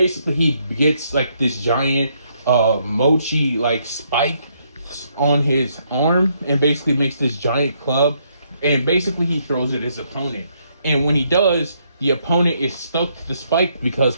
he gets like this giant Mochi like spike on his arm and basically makes this giant club, and basically he throws it at his opponent. And when he does, the opponent is stuck to the spike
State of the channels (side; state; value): both; inverted; correlation -0.73